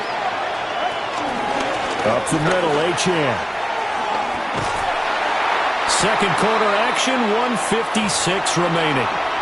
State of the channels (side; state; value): both; identical; correlation 1.00